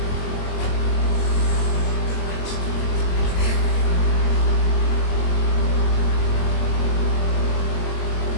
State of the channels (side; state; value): right; late; 22 ms